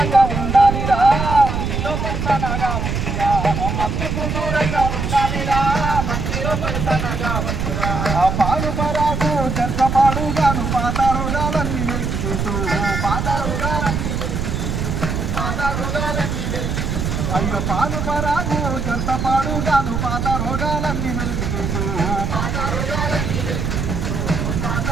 ఉండాలిరా, మందిలో పలసనగా వద్దురా. మత్తుకు దూరంగా ఉండాలిరా, మందిలో పలసనగా వద్దురా. పాడు పరాగు చెత్తపాడుగాను పాత రోగాలన్నీ వెలికితూ. అయ్యో పాలు పరాగు చెత్తపాడుగాను పాత రోగాలన్నీ వెలికితూ.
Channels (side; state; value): right; noise; rumble, 2 dB below the sound